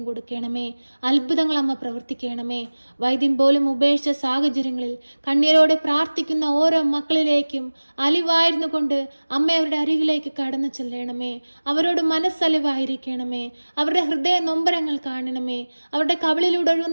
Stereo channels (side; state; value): both; inverted; correlation -1.00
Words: കൊടുക്കണമേ. അത്ഭുതങ്ങൾ അമ്മ പ്രവർത്തിക്കണമേ. വൈദ്യം പോലും ഉപേക്ഷിച്ച സാഹചര്യങ്ങളിൽ കണ്ണീരോടെ പ്രാർത്ഥിക്കുന്ന ഓരോ മക്കളിലേക്കും അലിവായിരുന്നു കൊണ്ട് അമ്മ അവരുടെ അരികിലേക്ക് കടന്നു ചെല്ലണമേ. അവരോട് മനസ്സലിവായിരിക്കണമേ. അവരുടെ ഹൃദയ നൊമ്പരങ്ങൾ കാണണമേ. അവരുടെ കവിളിലൂടെ